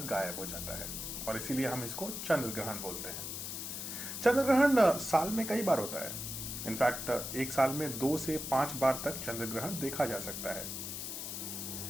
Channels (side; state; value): left; noise; hiss, 6 dB below the sound